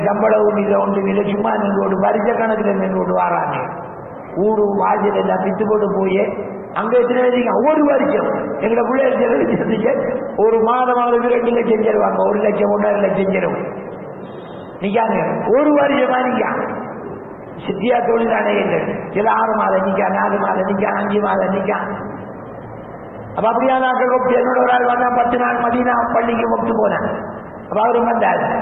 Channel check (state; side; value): identical; both; correlation 1.00